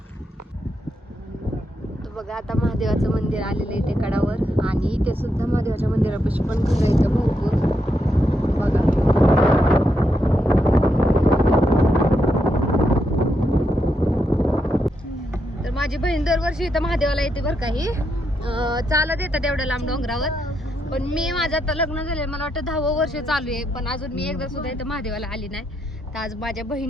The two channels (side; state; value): both; normal; correlation 0.81